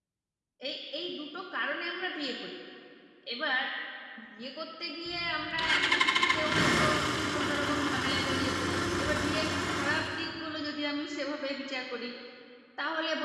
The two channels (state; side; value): identical; both; correlation 1.00